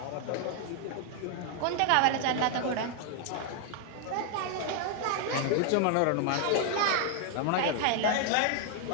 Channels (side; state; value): both; different; correlation 0.00